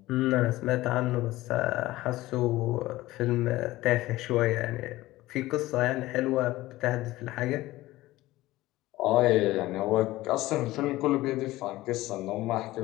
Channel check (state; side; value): quieter; right; 17.5 dB